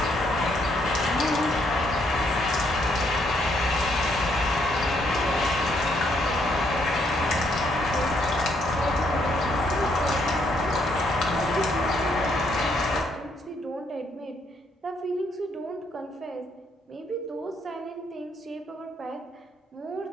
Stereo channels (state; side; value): normal; both; correlation 0.72